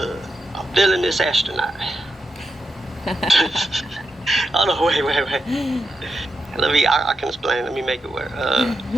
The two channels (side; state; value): both; normal; correlation 0.86